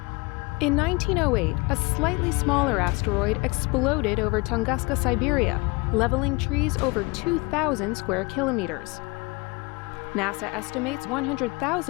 In 1908, a slightly smaller asteroid exploded over Tunguska, Siberia, leveling trees over 2,000 square kilometers. NASA estimates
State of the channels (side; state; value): right; quieter; 26.6 dB